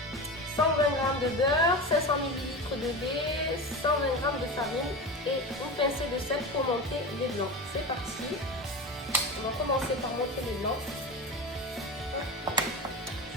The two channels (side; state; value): both; normal; correlation 0.25